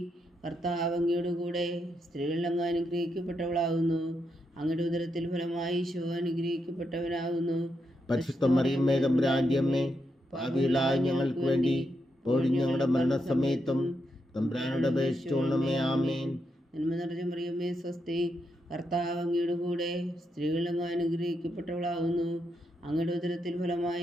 കർത്താവ് അങ്ങയുടെ കൂടെ സ്ത്രീകളിൽ അങ്ങ് അനുഗ്രഹിക്കപ്പെട്ടവളാകുന്നു. അങ്ങയുടെ ഉദരത്തിൽ ഫലമായി ഈശോ അനുഗ്രഹിക്കപ്പെട്ടവനാകുന്നു. പരിശുദ്ധ മറിയമ്മേ തമ്പുരാന്റെ അമ്മേ, പാപികളായ ഞങ്ങൾക്ക് വേണ്ടി ഇപ്പോഴും ഞങ്ങളുടെ മരണസമയത്തും തമ്പുരാനോട് അപേക്ഷിച്ചുകൊള്ളണമേ. ആമേൻ. നന്മ നിറഞ്ഞ മറിയമ്മേ സ്വസ്തി, കർത്താവ് അങ്ങയുടെ കൂടെ സ്ത്രീകളിൽ അങ്ങ് അനുഗ്രഹിക്കപ്പെട്ടവളാകുന്നു. അങ്ങയുടെ ഉദരത്തിൽ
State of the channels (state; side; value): normal; both; correlation 0.82